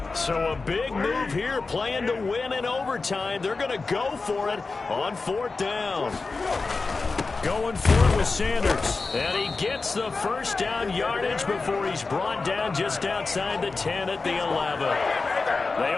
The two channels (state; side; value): quieter; right; 4.0 dB